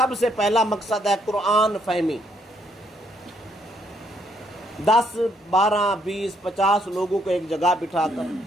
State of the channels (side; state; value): both; normal; correlation 0.71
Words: سے پہلا مقصد ہے قرآن فہمی۔ 10 12 20 50 لوگوں کو ایک جگہ بٹھا کر